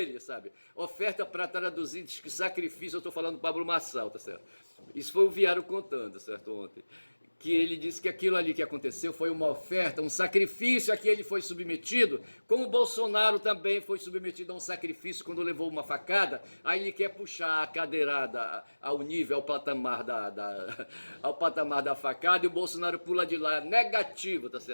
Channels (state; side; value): inverted; both; correlation -1.00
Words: sabe? Oferta para traduzir, diz que sacrifício, eu estou falando do Pablo Marçal, tá certo? Isso foi o Viário contando, certo, ontem. Que ele disse que aquilo ali que aconteceu foi uma oferta, um sacrifício a que ele foi submetido, como o Bolsonaro também foi submetido a um sacrifício quando levou uma facada, aí ele quer puxar a cadeirada ao nível, ao patamar da facada, e o Bolsonaro pula de lá, negativo, tá